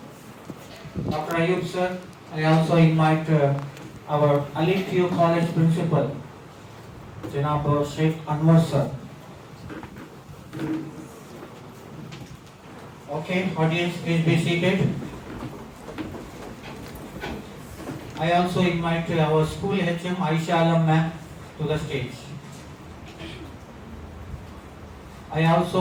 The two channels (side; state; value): both; identical; correlation 1.00